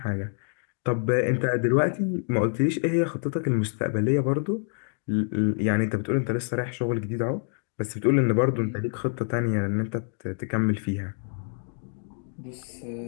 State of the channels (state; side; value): silent; right; 60 dB below the other